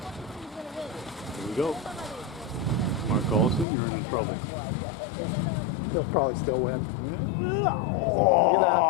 we go. Mark Olson, you're in trouble. He'll probably still win. Oh,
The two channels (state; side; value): drops out; right; at 3.7 s